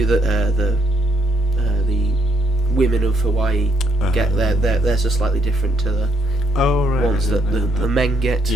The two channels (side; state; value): both; normal; correlation 0.71